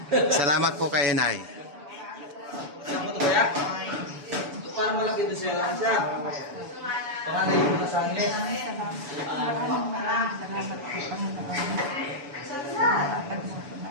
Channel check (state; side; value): late; left; 7.0 ms